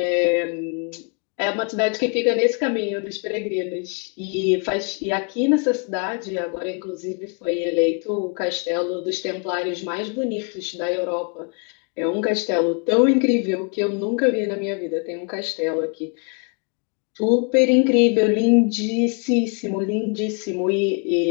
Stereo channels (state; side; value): quieter; right; 37.9 dB